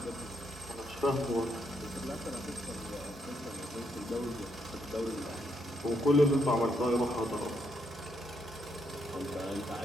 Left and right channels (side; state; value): both; normal; correlation 0.77